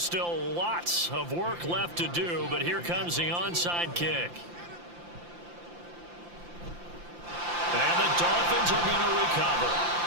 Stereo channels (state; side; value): late; left; 5.8 ms